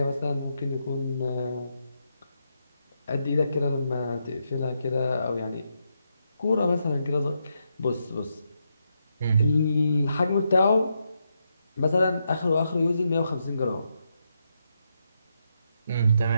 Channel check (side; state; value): both; inverted; correlation -0.82